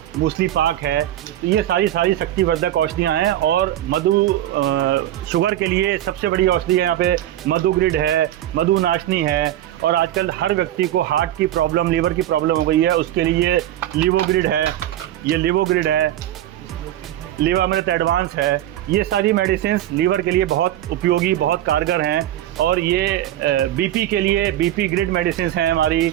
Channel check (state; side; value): quieter; left; 12.9 dB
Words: मूसली पाक है। तो ये सारी शक्तिवर्धक औषधियाँ हैं। और शुगर के लिए सबसे बड़ी औषधि है यहाँ पे मधुग्रिड है, मधुनाशनी है। और आजकल हर व्यक्ति को हार्ट की प्रॉब्लम, लीवर की प्रॉब्लम हो गई है, उसके लिए लिवोग्रिड है, ये लिवोग्रिड है, लिवामृत एडवांस है। ये सारी मेडिसिन लीवर के लिए बहुत उपयोगी, बहुत कारगर हैं। और ये बीपी के लिए बीपी ग्रिड मेडिसिन हैं हमारी,